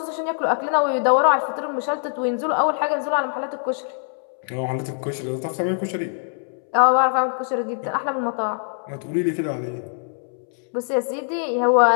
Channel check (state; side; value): silent; right; 63 dB below the other